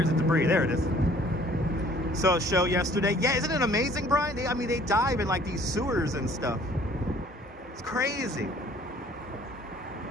the debris. There it is. So, show yesterday. Yeah, isn't it amazing, Brian? They dive in like these sewers and stuff. It's crazy.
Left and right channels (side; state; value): both; normal; correlation 0.55